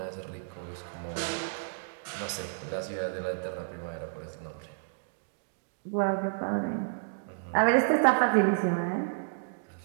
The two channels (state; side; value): silent; left; digital silence